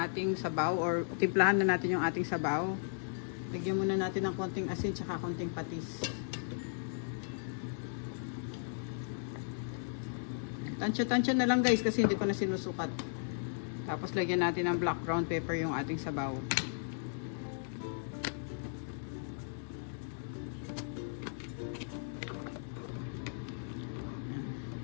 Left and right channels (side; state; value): right; silent; digital silence